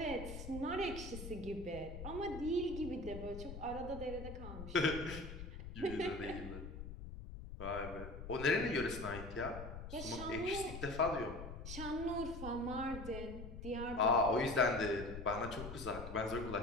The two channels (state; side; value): noise; left; rumble, 9 dB below the sound